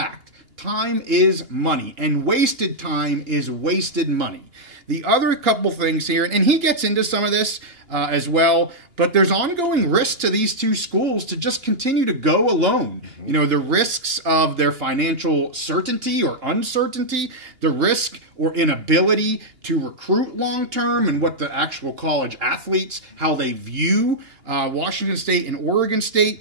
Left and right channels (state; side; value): late; left; 2.8 ms